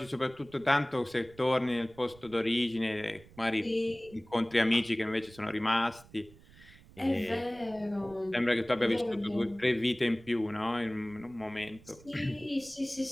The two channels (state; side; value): noise; right; rumble, 23 dB below the sound